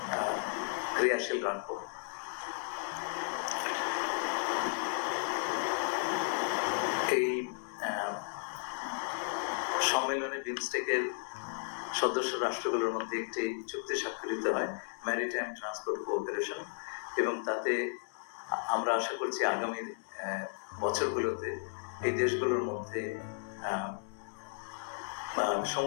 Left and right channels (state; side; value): silent; right; 55 dB below the other